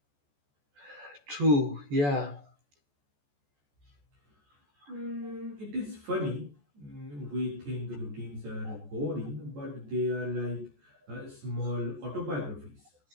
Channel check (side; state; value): left; late; 14 ms